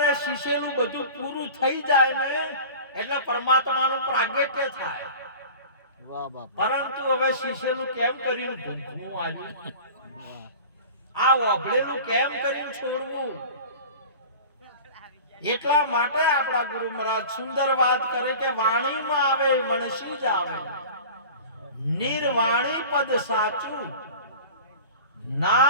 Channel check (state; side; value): inverted; both; correlation -0.38